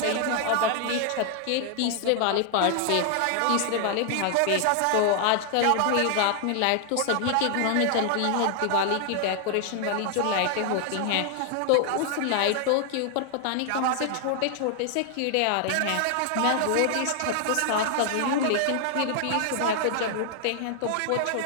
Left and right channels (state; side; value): different; both; correlation 0.00